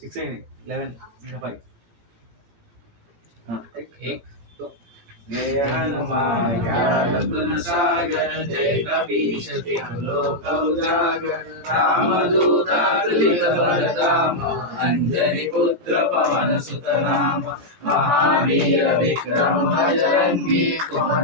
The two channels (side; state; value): left; late; 17 ms